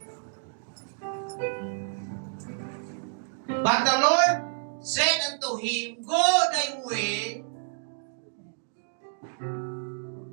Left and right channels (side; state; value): left; silent; 59 dB below the other